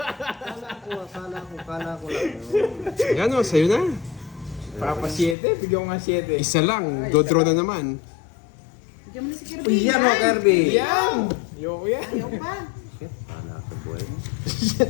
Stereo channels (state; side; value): drops out; right; at 5.4 s